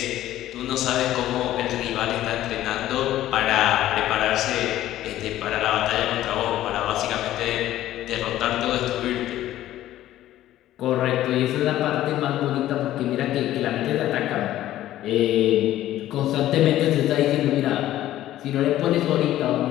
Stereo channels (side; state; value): right; quieter; 13.7 dB